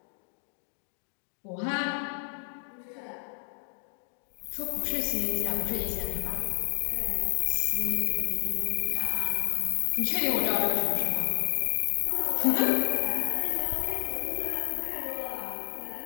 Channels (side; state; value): right; silent; 58 dB below the other